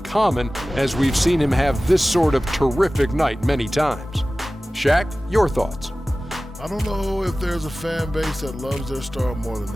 as we've seen him have this sort of terrific night many times. Shaq, your thoughts? I don't know if there's a fan base that loves their star more than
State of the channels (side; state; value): both; normal; correlation 0.97